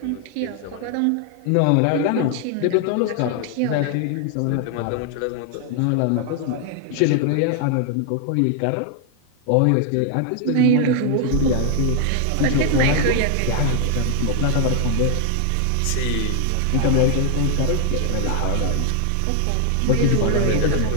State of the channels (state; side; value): different; both; correlation 0.00